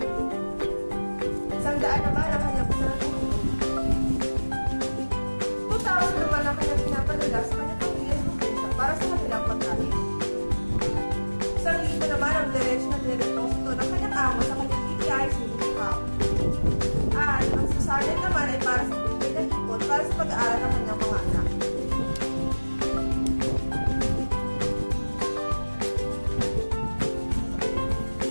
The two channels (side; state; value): both; inverted; correlation -1.00